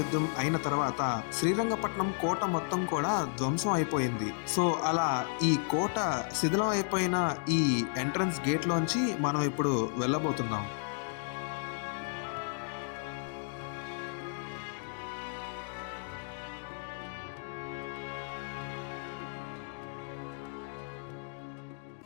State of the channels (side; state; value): right; silent; 56 dB below the other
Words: యుద్ధం అయిన తర్వాత శ్రీరంగపట్నం కోట మొత్తం కూడా ధ్వంసం అయిపోయింది. సో అలా ఈ కోట శిథిలం అయిపోయిన ఈ ఎంట్రన్స్ గేట్ లోంచి మనం ఇప్పుడు వెళ్ళబోతున్నాం.